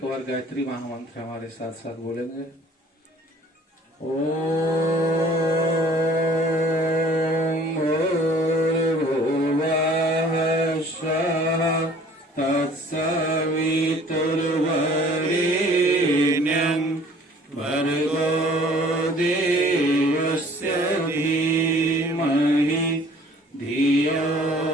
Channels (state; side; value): normal; both; correlation 0.53